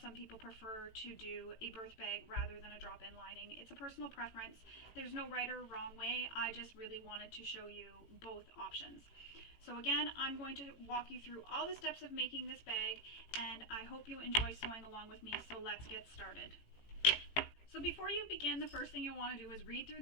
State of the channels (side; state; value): right; late; 18 ms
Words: people prefer to do a birth bag rather than a drop-in lining. It's a personal preference. There's no right or wrong way. I just really wanted to show you both options. So again, I'm going to walk you through all the steps of making this bag, and I hope you enjoy sewing along with me. So let's get started. So before you begin, the first thing you'll want to do is read through